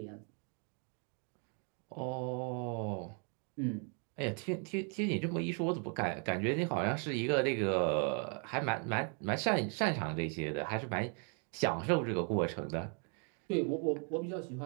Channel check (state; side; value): quieter; left; 39.5 dB